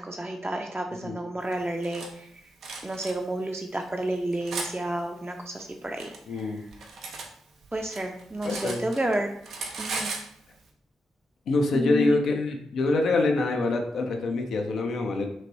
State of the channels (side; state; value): both; normal; correlation 0.85